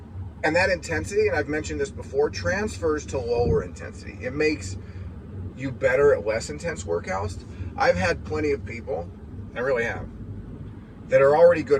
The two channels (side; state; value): both; identical; correlation 1.00